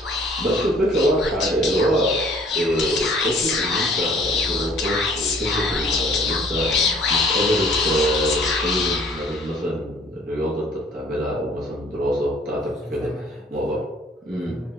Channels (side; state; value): both; normal; correlation 0.56